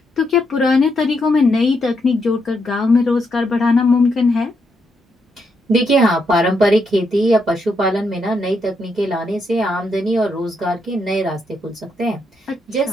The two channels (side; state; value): both; normal; correlation 0.79